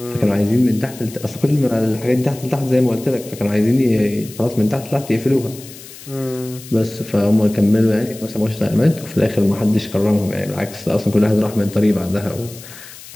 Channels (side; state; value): left; noise; hiss, 17 dB below the sound